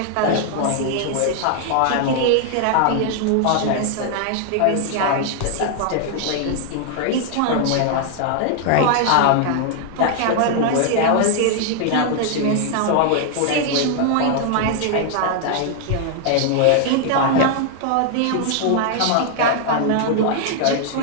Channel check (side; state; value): both; different; correlation 0.00